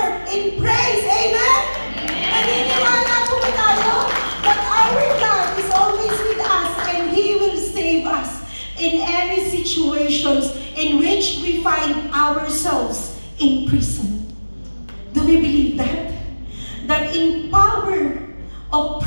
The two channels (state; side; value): inverted; both; correlation -1.00